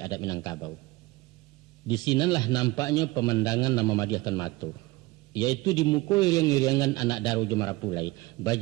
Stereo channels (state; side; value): quieter; left; 21.1 dB